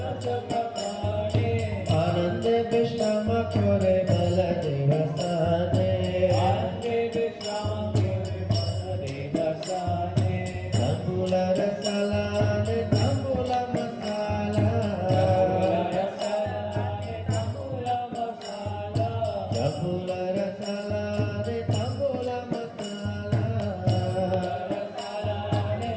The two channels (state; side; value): identical; both; correlation 1.00